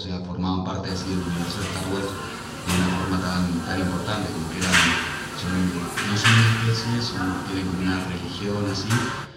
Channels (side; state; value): both; identical; correlation 1.00